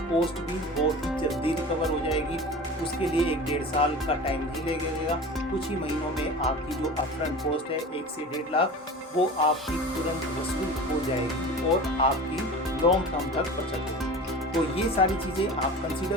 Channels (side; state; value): both; normal; correlation 0.35